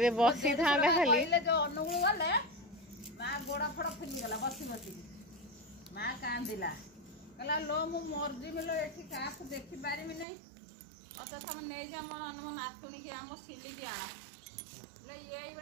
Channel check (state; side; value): drops out; left; at 10.2 s